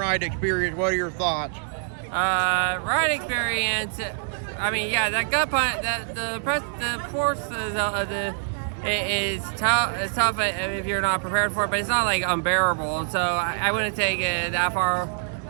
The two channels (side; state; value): left; silent; digital silence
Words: experience, what are your thoughts? Ride experience, I mean, yeah, that gut punch, the force is tough. It's tough if you're not prepared for it, but it's not like unbearable. So I wouldn't take it that far